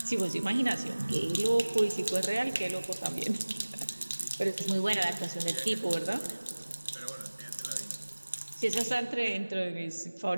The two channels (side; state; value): both; inverted; correlation -1.00